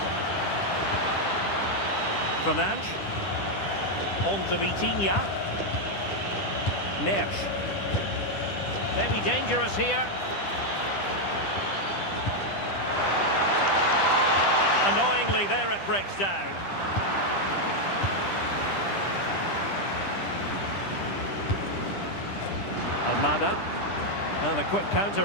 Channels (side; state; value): right; late; 10 ms